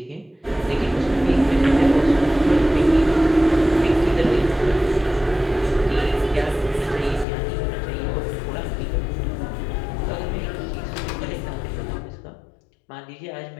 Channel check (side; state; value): right; drops out; at 7.2 s